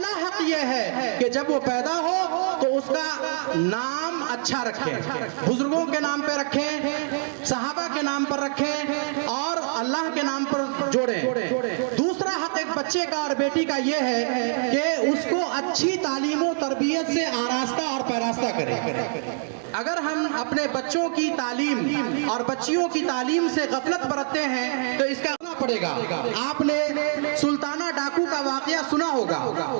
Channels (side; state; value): left; silent; digital silence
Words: حق یہ ہے کہ جب وہ پیدا ہو تو اس کا نام اچھا رکھیں, بزرگوں کے نام پہ رکھیں, صحابہ کے نام پر رکھیں اور اللہ کے نام پر جوڑیں. دوسرا حق ایک بچے کا اور بیٹی کا یہ ہے کہ اس کو اچھی تعلیم و تربیت سے آراستہ اور پیراستہ کریں. اگر ہم اپنے بچوں کی تعلیم اور بچیوں کی تعلیم سے غفلت برتتے ہیں تو اس کا کرنا پڑے گا. آپ نے سلطانہ ڈاکو کا واقعہ سنا ہوگا